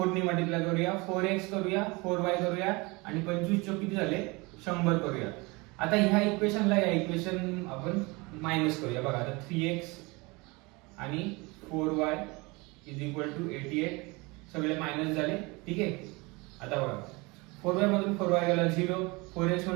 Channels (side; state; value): left; quieter; 25.6 dB